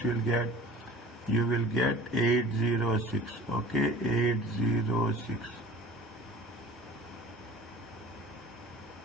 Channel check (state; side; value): normal; both; correlation 0.43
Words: you'll get? You will get 806. Okay, 806.